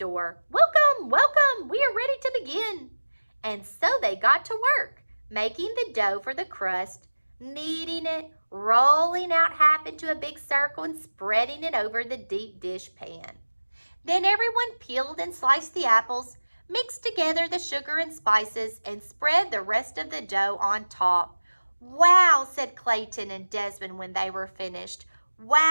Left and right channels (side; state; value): both; inverted; correlation -1.00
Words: "Welcome, welcome, we are ready to begin." And so they got to work, making the dough for the crust, kneading it, rolling out half into a big circle and spreading it over the deep dish pan. Then everyone peeled and sliced the apples, mixed together the sugar and spices, and spread the rest of the dough on top. "Wow," said Clayton and Desmond when they were finished.